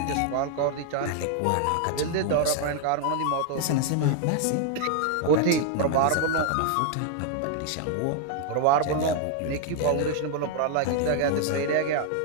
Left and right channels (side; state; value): both; different; correlation 0.00